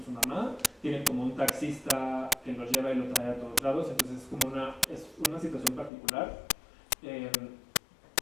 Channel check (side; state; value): right; drops out; at 5.9 s